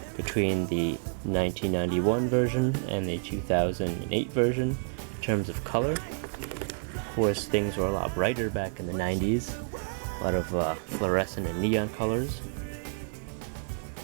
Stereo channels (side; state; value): left; silent; digital silence